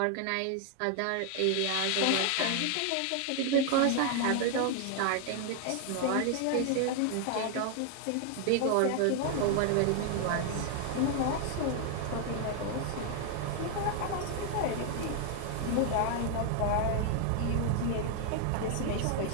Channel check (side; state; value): both; different; correlation 0.00